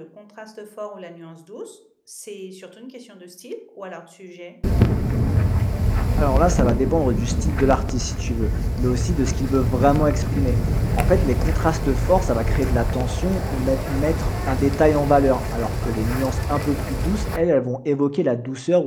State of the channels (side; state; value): both; identical; correlation 1.00